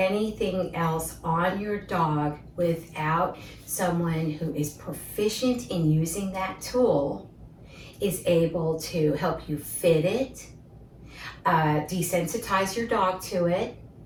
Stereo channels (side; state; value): both; identical; correlation 1.00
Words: else on your dog without someone who is proficient in using that tool, is able to help you fit it, desensitize your dog to it,